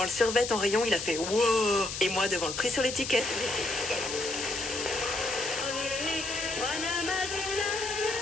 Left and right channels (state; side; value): noise; left; hiss, 6 dB below the sound